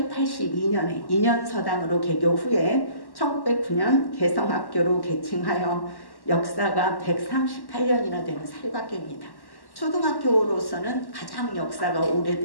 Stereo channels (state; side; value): late; right; 1.1 ms